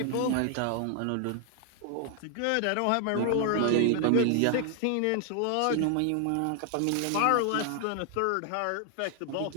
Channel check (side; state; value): both; different; correlation 0.00